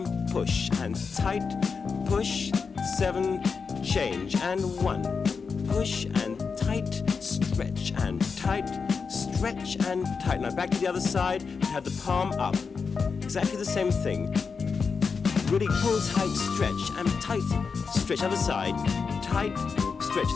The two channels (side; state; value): right; quieter; 5.3 dB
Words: push, and tight, push, 7, change, and 1. Push and tight, stretch and tight, stretch and tight. Now back to the other side. Have the palm up. Exactly the same thing. Really pull tight, stretch, and tight, stretch. Other side, tight, stretch.